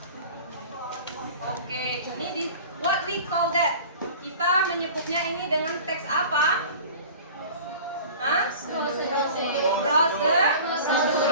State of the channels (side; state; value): both; inverted; correlation -0.40